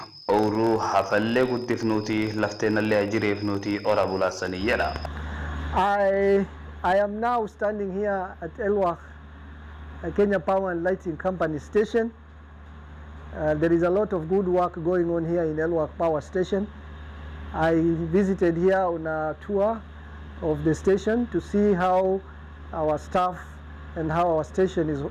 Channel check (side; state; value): both; identical; correlation 1.00